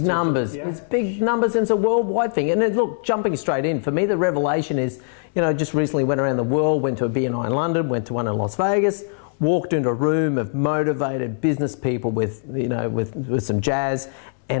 Big numbers. Yeah. It's big numbers, and it's a worldwide thing. And then, look, jumping straight in, for me, the revelation is, you know, just recently went around the world, went to a BNI in London, went to one in Las Vegas, walked into a room of motivated business people with, you know, with some jazz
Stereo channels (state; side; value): silent; right; 64 dB below the other